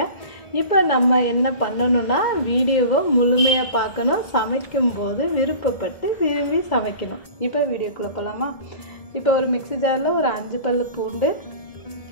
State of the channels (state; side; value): late; right; 1.7 ms